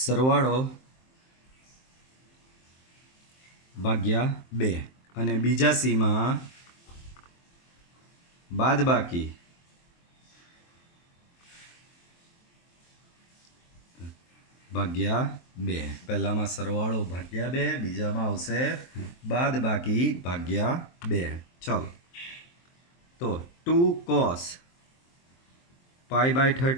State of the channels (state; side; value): late; right; 23 ms